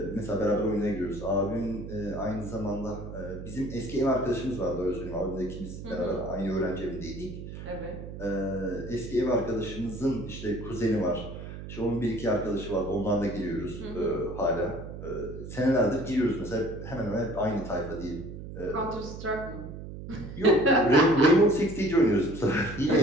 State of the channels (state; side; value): noise; right; hum, 10 dB below the sound